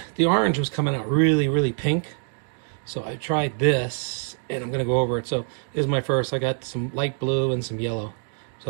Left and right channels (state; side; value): silent; left; 62 dB below the other